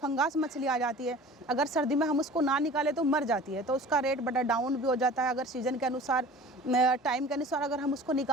मछली आ जाती है, अगर सर्दी में हम उसको ना निकाले तो मर जाती है, तो उसका रेट बड़ा डाउन भी हो जाता है। अगर सीजन के अनुसार, टाइम के अनुसार अगर हम उसको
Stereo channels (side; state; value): both; normal; correlation 0.43